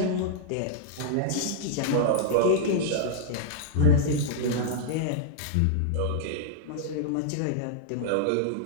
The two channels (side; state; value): both; different; correlation -0.02